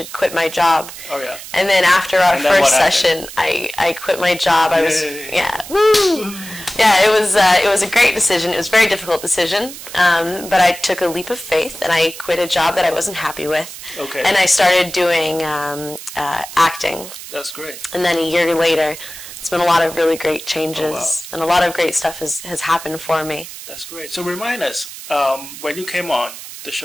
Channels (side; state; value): right; noise; hiss, 13 dB below the sound